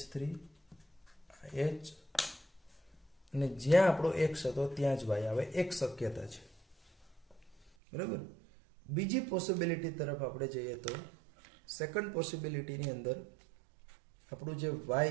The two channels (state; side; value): drops out; left; at 7.7 s